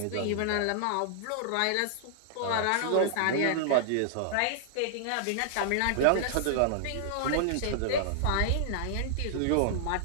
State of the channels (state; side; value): different; both; correlation -0.01